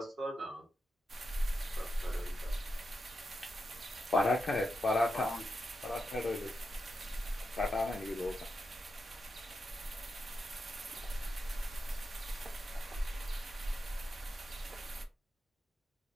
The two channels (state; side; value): normal; both; correlation 0.87